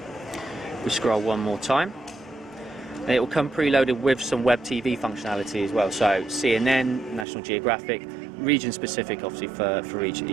We scroll one more time. And it will come preloaded with some web TV functionality as well, so CNN, National Geographic, region-specific obviously for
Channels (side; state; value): left; drops out; at 7.2 s